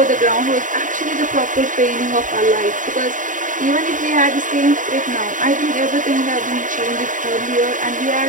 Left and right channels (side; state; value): left; late; 0.38 ms